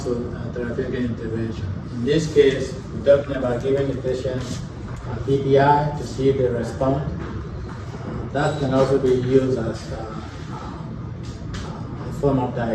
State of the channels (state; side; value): identical; both; correlation 1.00